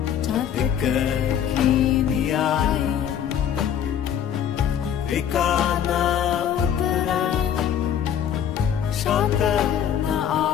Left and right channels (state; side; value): quieter; right; 9.2 dB